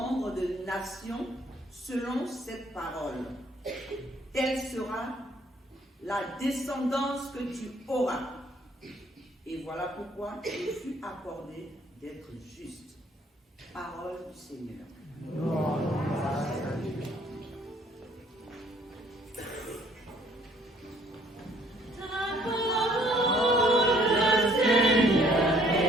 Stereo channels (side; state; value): both; normal; correlation 0.61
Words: de nations selon cette parole. Telle sera la descendance que tu auras. Et voilà pourquoi il fut accordé d'être juste. Parole du Seigneur.